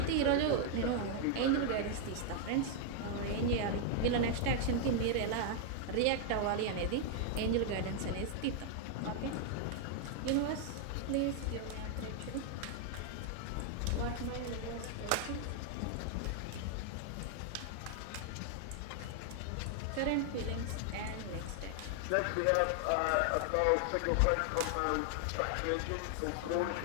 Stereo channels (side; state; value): both; different; correlation 0.00